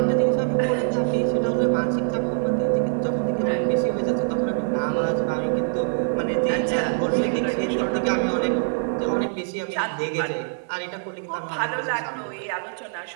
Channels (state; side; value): silent; left; 63 dB below the other